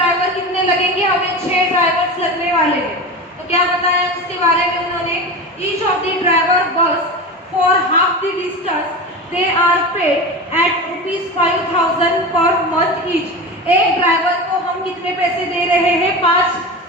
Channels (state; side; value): normal; both; correlation 0.26